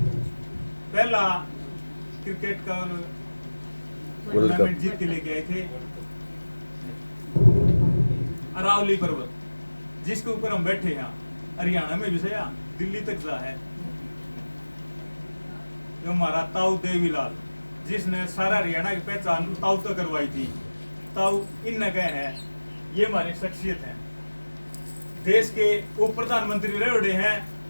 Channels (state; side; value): inverted; both; correlation -1.00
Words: पहला क्रिकेट का टूर्नामेंट जीत के लेके आए थे, अरावली पर्वत जिसके ऊपर हम बैठे हैं, हरियाणा में भी से दिल्ली तक जा है। जो हमारा ताऊ देवीलाल, जिसने सारा हरियाणा की पहचान ताऊ तक करवाई थी, ताऊ इन गए हैं। ये हमारी शख्सियत है। देश के उप प्रधानमंत्री रहे हैं